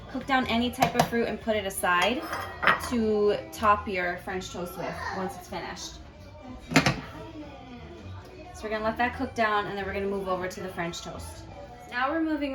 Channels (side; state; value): both; identical; correlation 1.00